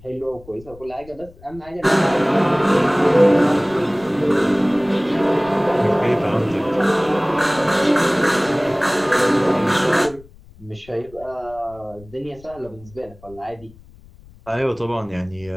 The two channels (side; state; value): left; noise; rumble, 23 dB below the sound